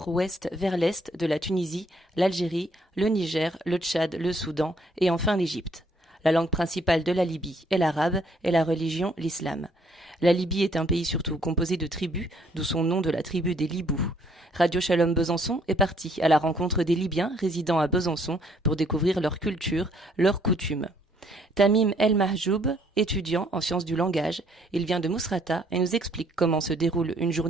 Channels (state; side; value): normal; both; correlation 0.66